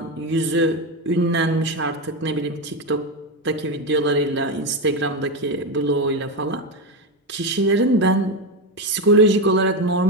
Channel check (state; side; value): normal; both; correlation 0.12